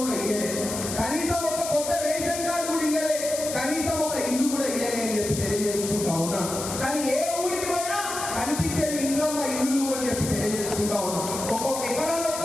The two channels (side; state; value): left; noise; hiss, 6 dB below the sound